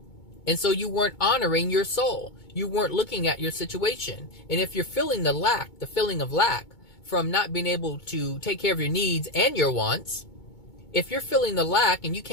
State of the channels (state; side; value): late; right; 2.2 ms